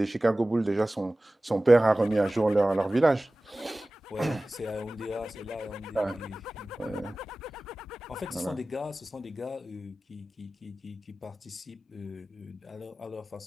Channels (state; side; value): normal; both; correlation 0.97